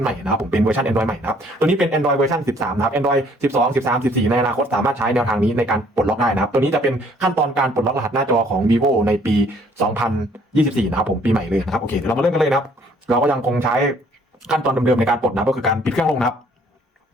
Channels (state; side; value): normal; both; correlation 0.61